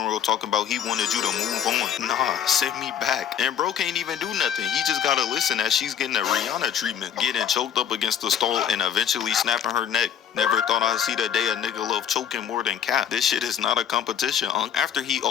talking about he wanted you to move on. Nah, send me back. And bro can't even do nothing. He just gotta listen as she's getting a Rihanna treatment. Getting choked up against the stall and eventually snapping her neck. Never thought I'd see the day a nigga love choking more than Cap. This shit is not a competition, After he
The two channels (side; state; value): right; quieter; 9.0 dB